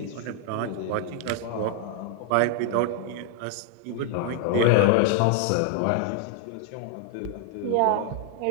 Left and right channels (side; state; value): both; different; correlation 0.00